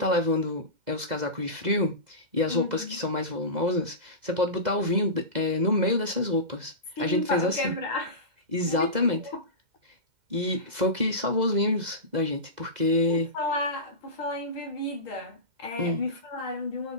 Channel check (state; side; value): late; left; 2.0 ms